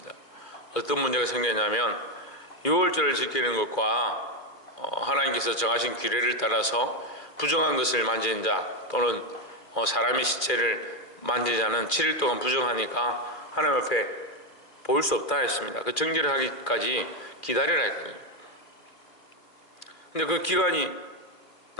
어떤 문제가 생겼냐면 유월절을 지키는 것과 하나님께서 정하신 규례를 따라서 부정한 것을 만지는 자 또는 사람의 시체를 만지는 자는 7일 동안 부정하니까 하나님 앞에 보일 수 없다 했습니다. 그 정결을 하기까지 기다리라 했거든요. 근데 그 기간이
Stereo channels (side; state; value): right; late; 2.5 ms